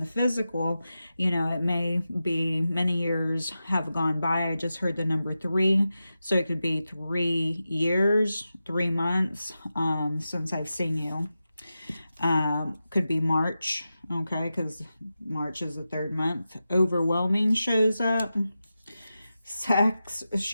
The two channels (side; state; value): both; inverted; correlation -0.92